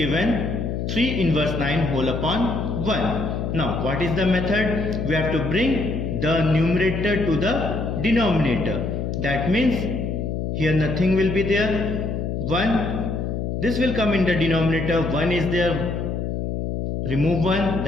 3 inverse 9 whole upon 1. Now what is the method? We have to bring the numerator to the denominator. That means here nothing will be there. 1. This will come in the denominator. 1 is there. Remove 1.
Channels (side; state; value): left; noise; hum, 2 dB below the sound